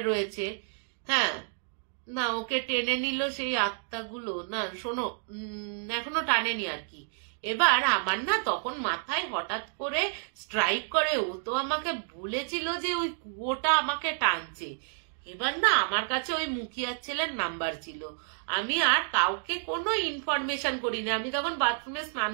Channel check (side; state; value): left; silent; digital silence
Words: রয়েছে। হ্যাঁ, না ওকে টেনে নিল সেই আত্মাগুলো, না শোনো এখনো টানেনি আর কি, এবার আমার না তখন মাথায় হঠাৎ করে স্ট্রাইক করে, ও তো আমাকে বলেছিল যে ওই কুয়োটা আমাকে টানছে। এবার না আমার কাছে ওই মুখিয়ার ছেলের নাম্বার ছিল, আমি আর কাউকে কোনো ইনফরমেশন করিনি। আমি তখন বাথরুমে স্নান